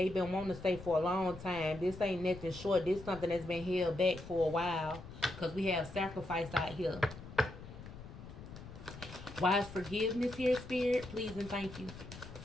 been wanting to say for a long time. This ain't nothing short. This is something that's been held back for a while because we have sacrifice out here. Why is forgiveness here, Spirit? Please and thank you.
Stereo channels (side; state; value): left; noise; rumble, 14 dB below the sound